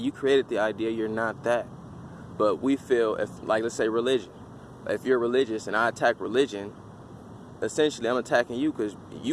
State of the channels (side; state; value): both; identical; correlation 1.00